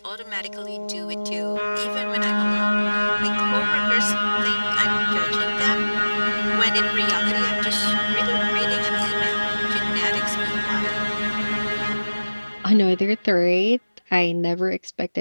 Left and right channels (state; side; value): inverted; both; correlation -1.00